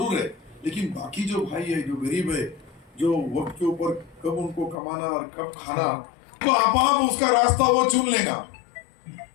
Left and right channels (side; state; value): right; drops out; at 4.8 s